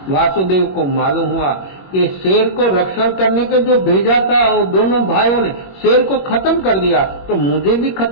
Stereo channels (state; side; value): late; right; 21 ms